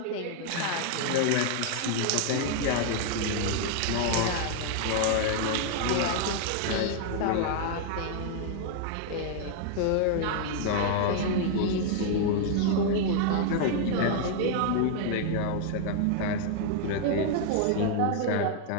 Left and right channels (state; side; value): different; both; correlation 0.00